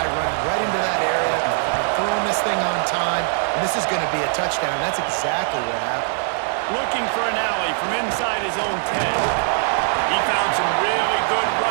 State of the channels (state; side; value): silent; left; 57 dB below the other